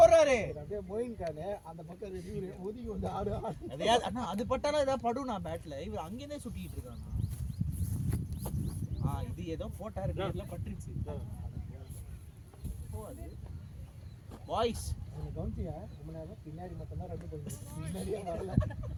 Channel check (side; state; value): both; identical; correlation 1.00